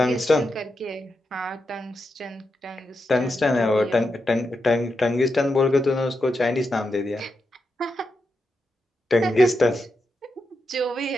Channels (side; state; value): both; normal; correlation 0.86